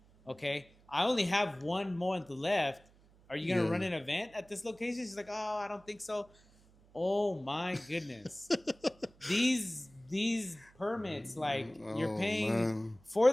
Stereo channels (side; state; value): right; noise; hum, 28 dB below the sound